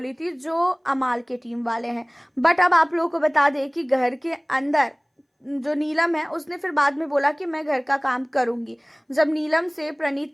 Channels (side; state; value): both; identical; correlation 1.00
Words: थी जो अमाल के टीम वाले हैं। बट अब आप लोगों को बता दें कि घर के अंदर जो नीलम है उसने फिर बाद में बोला कि मैं घर का काम करूंगी। जब नीलम से